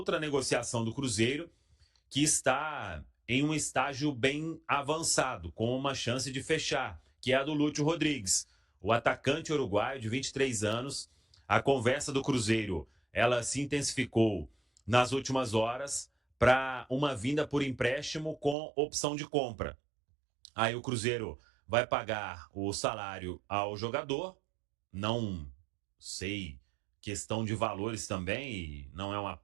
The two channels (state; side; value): drops out; left; at 18.6 s